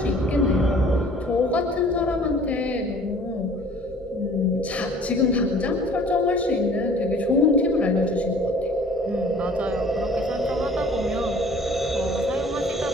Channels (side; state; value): both; normal; correlation 0.51